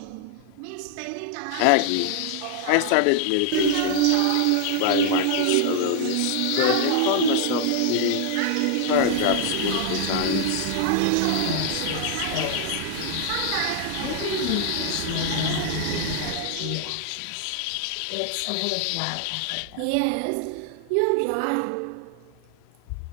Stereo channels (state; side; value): different; both; correlation 0.00